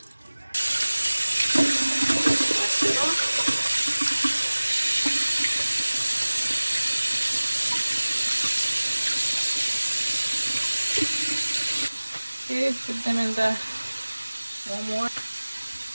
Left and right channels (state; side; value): inverted; both; correlation -1.00